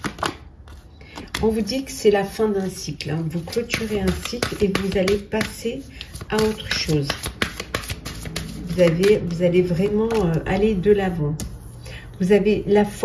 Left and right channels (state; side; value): identical; both; correlation 1.00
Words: On vous dit que c'est la fin d'un cycle. Hein. Vous clôturez un cycle et vous allez passer à autre chose. Vous allez vraiment aller de l'avant. Vous avez la